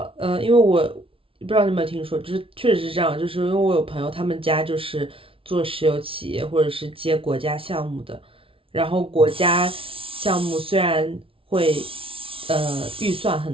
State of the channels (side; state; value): left; late; 0.26 ms